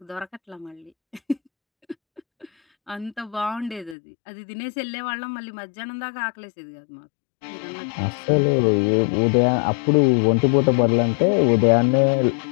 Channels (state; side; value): drops out; right; at 4.0 s